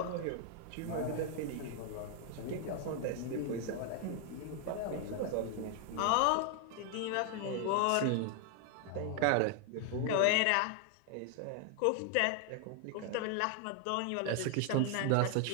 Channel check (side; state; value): both; different; correlation 0.00